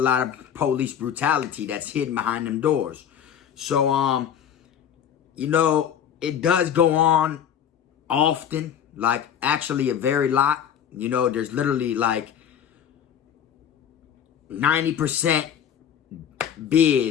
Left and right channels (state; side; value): quieter; right; 8.9 dB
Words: of police brutality that's hidden behind them doors. So, it does go on often, actually a very lot. There's literally 90%